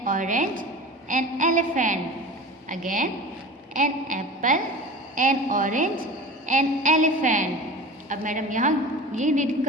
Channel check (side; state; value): both; normal; correlation 0.35